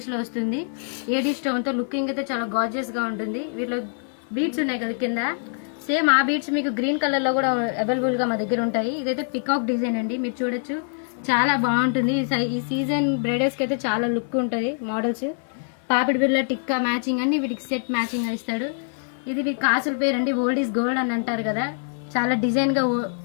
లో వస్తుంది. ఏడీ స్టోన్ తో లుకింగ్ అయితే చాలా గార్జియస్ గా ఉంటుంది. వీటిలో బీట్స్ ఉన్నాయి కదా కింద, సేమ్ ఆ బీట్స్ మీకు గ్రీన్ కలర్ లో కూడా అవైలబుల్ గా మా దగ్గర ఉంటాయి. ఇదైతే పికాక్ డిజైన్ అండి, మీరు చూడొచ్చు, చాలా బాగుంటుంది. ఈ సీజన్ బ్రైడల్స్ కి అయితే చాలా లుక్ ఉంటుంది. మోడల్స్ పాపిడి బిళ్ళ టిక్కా మ్యాచింగ్ అన్ని వీటికి సెట్ మ్యాచింగ్ గా ఇస్తాడు. ఇది మీ కాసుల పేరు అండి, ఓల్డ్ ఈజ్ గోల్డ్ అని అంటారు కదా. చాలా డిజైన్ గా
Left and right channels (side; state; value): right; silent; 59 dB below the other